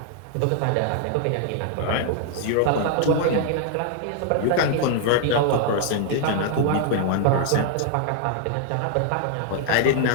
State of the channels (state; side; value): different; both; correlation 0.00